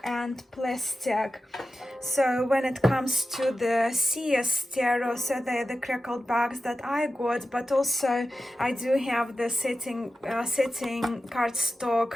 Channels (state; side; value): normal; both; correlation 0.92